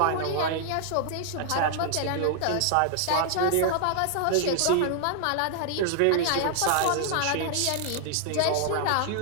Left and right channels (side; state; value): both; different; correlation -0.01